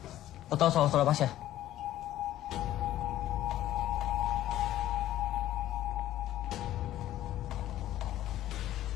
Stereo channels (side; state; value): right; quieter; 13.5 dB